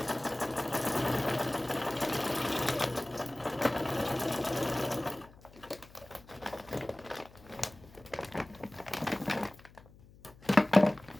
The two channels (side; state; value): left; noise; hum, 23 dB below the sound